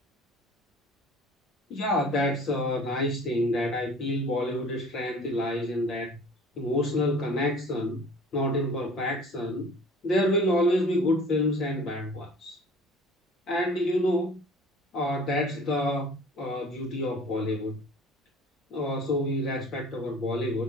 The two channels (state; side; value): normal; both; correlation 0.46